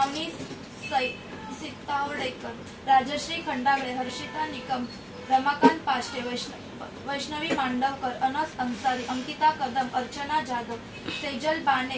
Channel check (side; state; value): both; identical; correlation 1.00